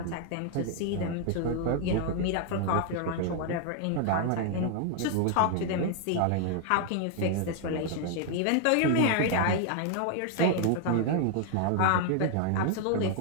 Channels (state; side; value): different; both; correlation 0.00